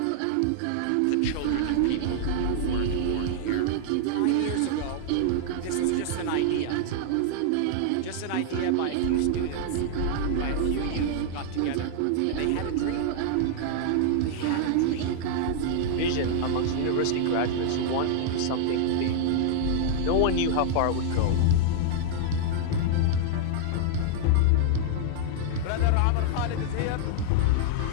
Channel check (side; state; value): both; different; correlation -0.01